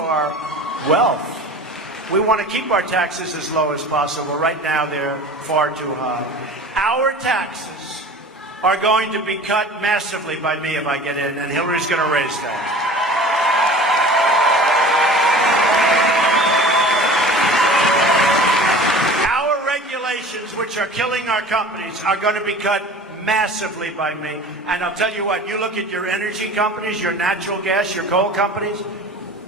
wealth. We want to keep our taxes as low as possible. Right now, they're far too high. Our taxes are going to be cut massively by me if I get in, and Hillary's going to raise that. Which are killing our companies are going to be cut massively by me. And I'll tell you what, you look at your energy companies, your natural gas, your coal companies,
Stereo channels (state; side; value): normal; both; correlation 0.40